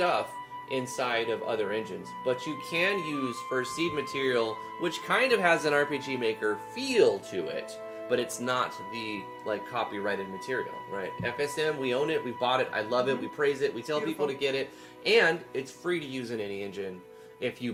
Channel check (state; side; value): identical; both; correlation 1.00